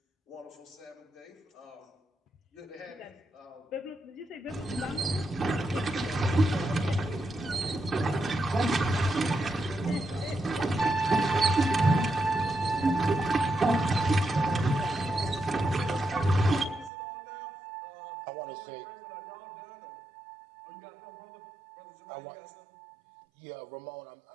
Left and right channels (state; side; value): drops out; left; at 16.9 s